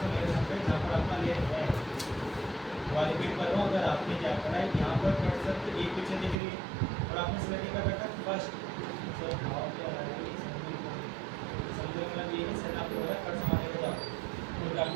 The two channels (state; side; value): drops out; left; at 6.4 s